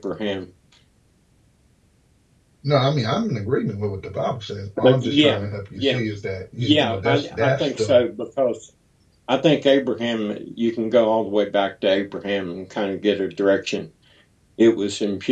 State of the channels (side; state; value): both; identical; correlation 1.00